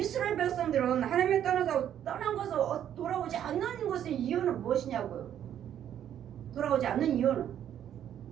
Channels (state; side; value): quieter; left; 10.2 dB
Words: 백성들은 하나님이 떠난 것을 돌아오지 않는 것의 이유는 무엇이냐고요. 돌아오지 않는 이유는